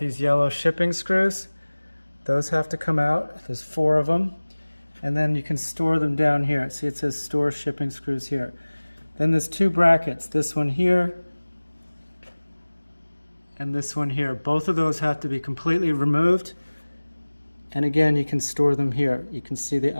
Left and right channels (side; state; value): both; inverted; correlation -1.00